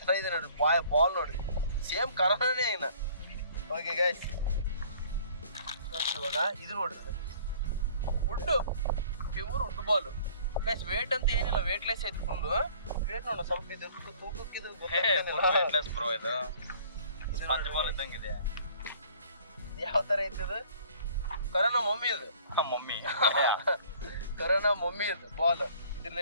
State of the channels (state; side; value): inverted; both; correlation -0.54